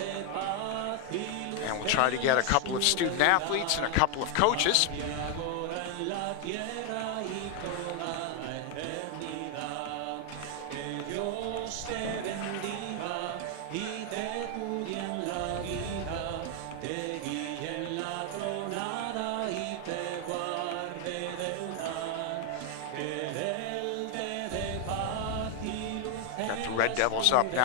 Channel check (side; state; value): both; different; correlation 0.00